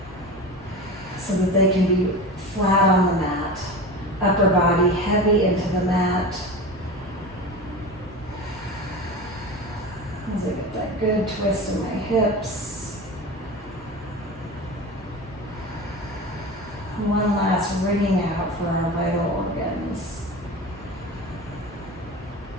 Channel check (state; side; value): normal; both; correlation 0.30